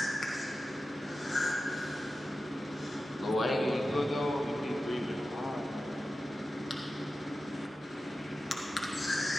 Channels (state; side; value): normal; both; correlation 0.93